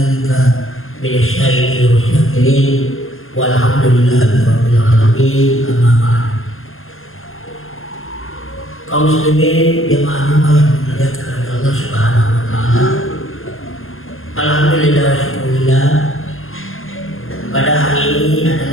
minasyaitonir rajimin. Walhamdulillahi rabbil alamin. Amma ba'd. Kaum muslimin jemaah yang dimuliakan oleh Allah Subhanahu wa taala. Alhamdulillah wa syukurillah. Pada hari ini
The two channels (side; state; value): right; late; 0.60 ms